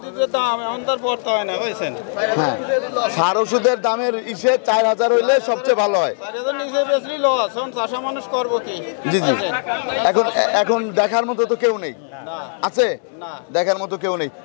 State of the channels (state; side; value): silent; right; digital silence